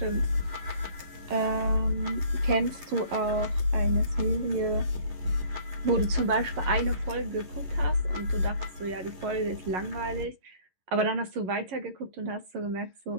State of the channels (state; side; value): late; left; 11 ms